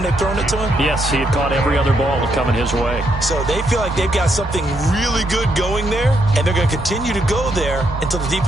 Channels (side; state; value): both; normal; correlation 0.77